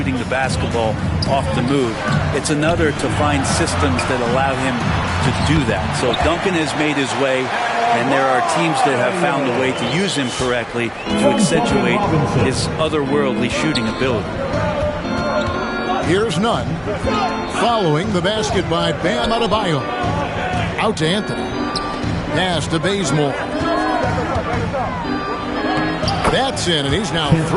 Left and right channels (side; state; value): both; identical; correlation 1.00